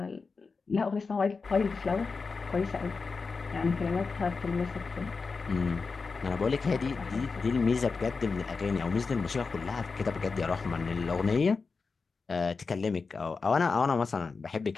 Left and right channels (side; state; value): right; quieter; 4.6 dB